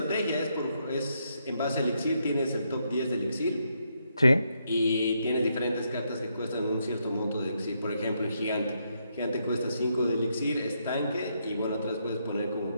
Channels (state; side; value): inverted; both; correlation -0.78